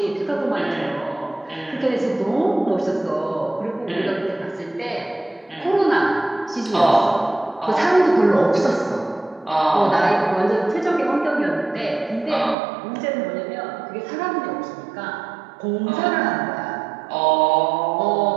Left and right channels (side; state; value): left; drops out; at 12.6 s